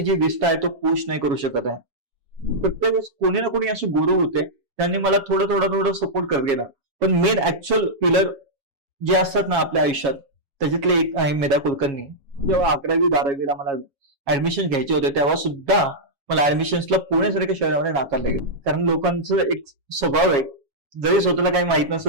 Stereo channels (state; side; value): late; left; 7.2 ms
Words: जी विष्ठा आहे तो पुश नाही करू शकत आहे. प्रत्येक वेळेस कोणी ना कोणी असे गुरु होते, त्यांनी मला थोडं सपोर्ट करत गेला. पण मेन ऍक्च्युअल पिलर जे असतात ना आपल्या आयुष्यात, त्याच्यातले एक आहे मेधा कुलकर्णी. जेव्हा 11वी-12वीला मला ऍडमिशन घ्यायचे होते तेव्हा सुद्धा मला ऍडमिशन्सला पुण्यासारख्या शहरामध्ये नाकारले गेले. कारण लोकांचं एक स्वभाव आहे, जरी स्वतःला काही माहित